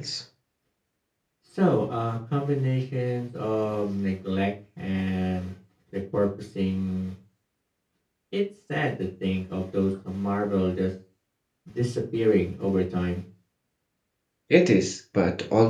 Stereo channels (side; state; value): both; identical; correlation 1.00